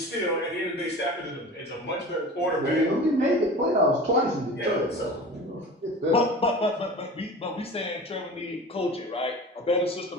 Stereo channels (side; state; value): both; normal; correlation 0.36